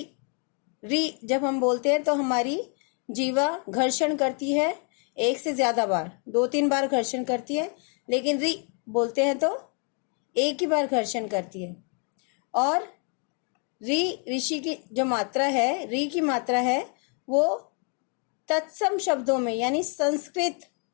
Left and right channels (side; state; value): right; quieter; 39.1 dB